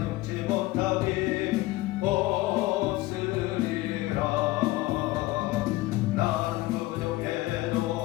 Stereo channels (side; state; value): right; quieter; 18.5 dB